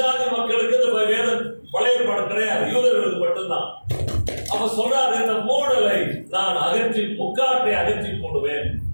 மக்களுக்கு இந்த வேதம் பழைய ஏற்பாடு கிடையாது, யூதர்களுக்கு மட்டும்தான். அவ சொல்றாரு, இந்த மூடலை நான் அகற்றி, முக்காட்டை அகற்றி போடுவேன்.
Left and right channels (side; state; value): both; inverted; correlation -1.00